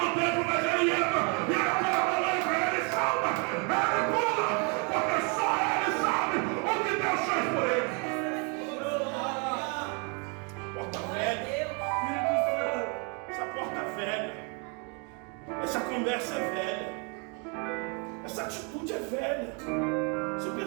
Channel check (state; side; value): quieter; left; 34.6 dB